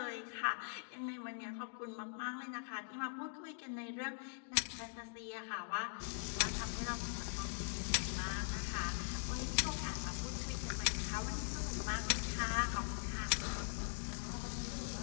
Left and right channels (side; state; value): right; silent; digital silence